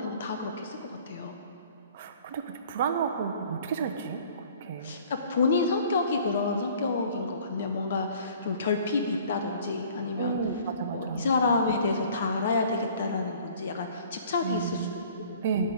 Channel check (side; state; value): both; inverted; correlation -0.52